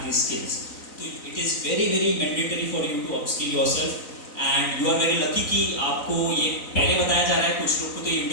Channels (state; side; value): late; right; 3.9 ms